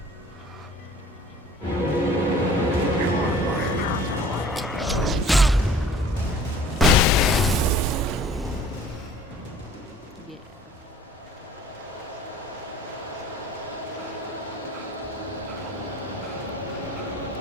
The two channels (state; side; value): normal; both; correlation 0.49